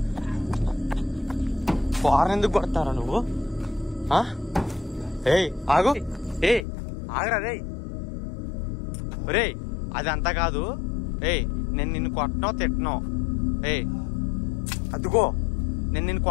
కార్ను ఎందుకు కొడతారా నువ్వు? ఆగు. ఆగరా. రే అది అంతా కాదు. నేను నిన్ను కొట్టనో తిట్టనో. అదుగో నేను నిన్ను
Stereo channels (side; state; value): right; drops out; at 6.7 s